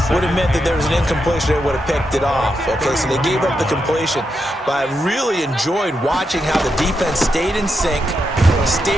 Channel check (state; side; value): normal; both; correlation 0.84